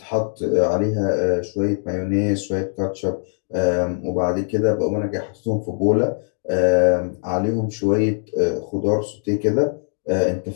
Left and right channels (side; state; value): right; silent; 65 dB below the other